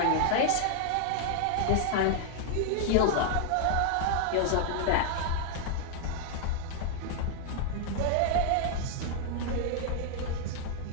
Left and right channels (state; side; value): different; both; correlation 0.00